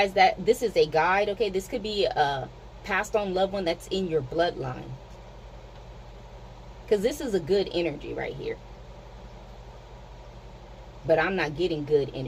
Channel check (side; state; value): both; identical; correlation 1.00